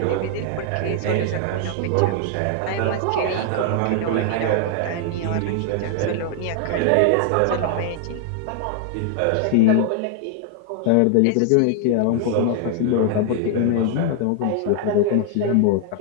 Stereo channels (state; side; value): different; both; correlation 0.00